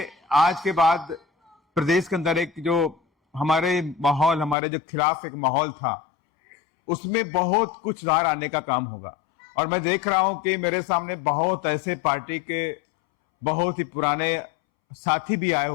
आज के बाद प्रदेश के अंदर एक जो हमारे जो खिलाफ एक माहौल था, उसमें बहुत कुछ सुधार आने का काम होगा। और मैं देख रहा हूं कि मेरे सामने बहुत ऐसे पार्टी के बहुत ही पुराने साथी भी आए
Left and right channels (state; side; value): drops out; right; at 4.5 s